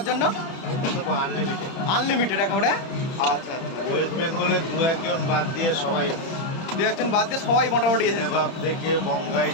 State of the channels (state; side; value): late; right; 30 ms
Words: জন্য? এটা তো আনলিমিটেড। আনলিমিটেড একেবারে? আচ্ছা আচ্ছা। ওয়েস্ট বেঙ্গলে 2-1 জন বাদ দিয়ে সবাই, 2-1 জন বাদ দিয়ে সবাই মোটামুটি এসেছে। নেবাব থেকে বঙ্গাই